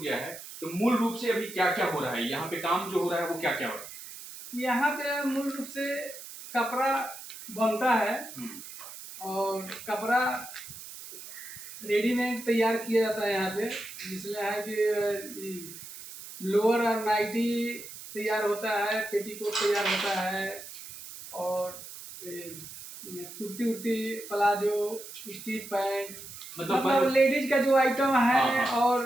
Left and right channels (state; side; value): noise; right; hiss, 13 dB below the sound